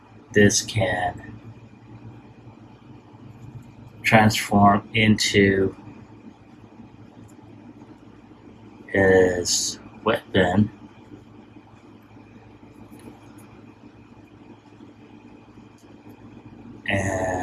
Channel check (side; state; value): both; identical; correlation 1.00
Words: this can transform into his weapon.